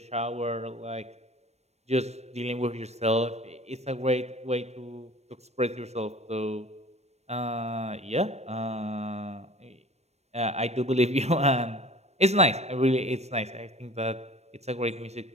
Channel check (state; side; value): late; left; 0.31 ms